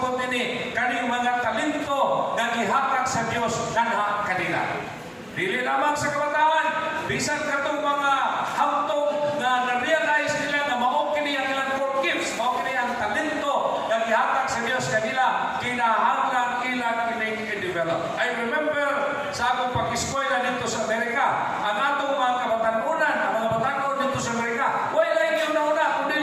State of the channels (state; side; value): identical; both; correlation 1.00